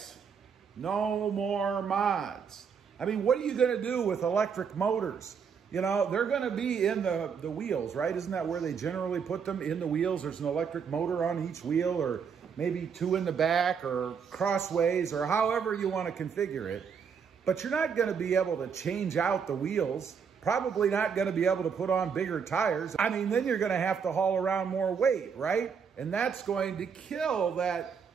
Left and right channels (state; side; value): quieter; left; 6.6 dB